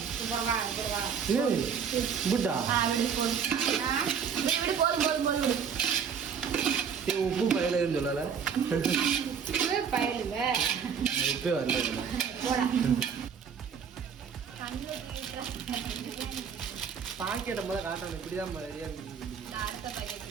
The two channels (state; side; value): quieter; left; 6.9 dB